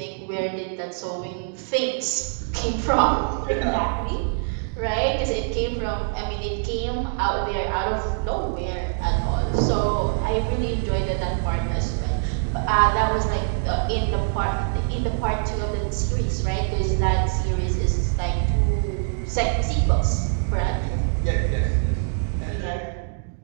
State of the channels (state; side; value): silent; left; digital silence